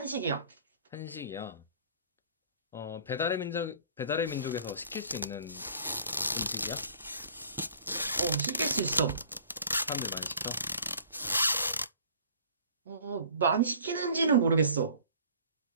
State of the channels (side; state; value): both; inverted; correlation -0.51